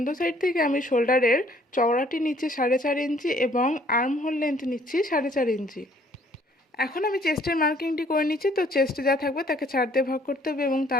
সাইড থেকে আমি শোল্ডারের চওড়াটি নিচ্ছি 4.5 ইঞ্চি এবং আর্ম হোল লেন্থ নিচ্ছি 4.5 ইঞ্চি। এখন আমি চেস্টের মার্কিংটি করে নিচ্ছি। তো চেস্টে যা থাকবে তাকে 4 দিয়ে ভাগ করতে হবে এবং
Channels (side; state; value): both; normal; correlation 0.61